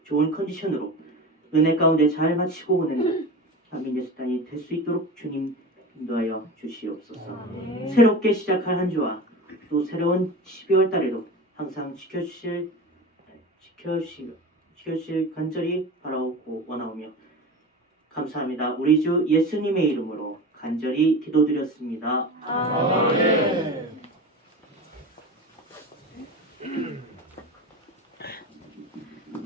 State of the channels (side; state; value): both; normal; correlation 0.30